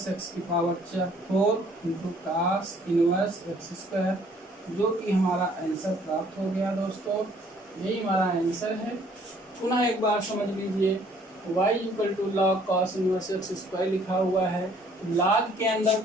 x की power 4 into cos inverse x square, जो कि हमारा आंसर प्राप्त हो गया। दोस्तों यही हमारा आंसर है। पुनः एक बार समझ लीजिए, y equal to log cos inverse x square लिखा हुआ है, log के अंदर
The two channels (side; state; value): both; normal; correlation 0.60